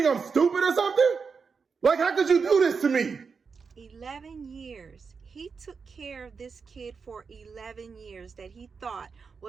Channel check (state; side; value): quieter; left; 5.4 dB